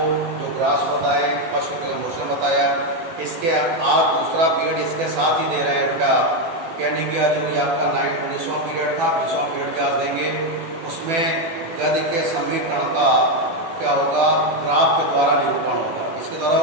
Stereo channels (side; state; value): left; late; 18 ms